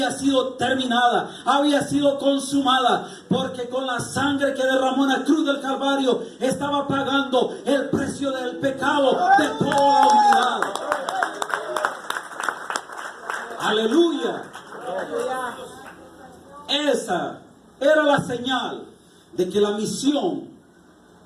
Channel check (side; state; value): both; identical; correlation 1.00